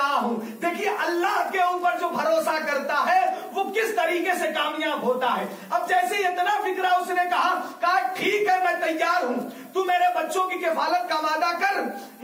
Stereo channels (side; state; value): both; identical; correlation 1.00